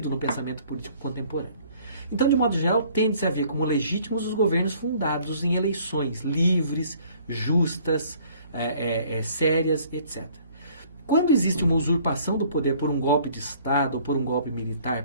no pensamento político contemporâneo. Então, de modo geral, tende-se a ver como legítimos os governos fundados em eleições livres, justas, sérias, etc. Quando existe uma usurpação do poder por um golpe de Estado ou por um golpe militar,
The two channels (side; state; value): both; inverted; correlation -0.57